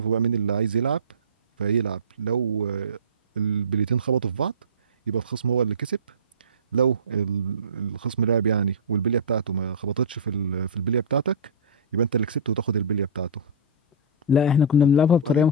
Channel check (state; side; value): normal; both; correlation -0.20